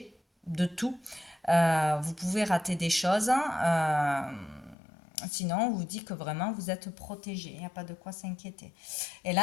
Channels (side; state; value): right; drops out; at 4.8 s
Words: de tout. Vous pouvez rater des choses. Sinon, on vous dit que vraiment vous êtes protégé. Il n'y a pas de quoi s'inquiéter. Et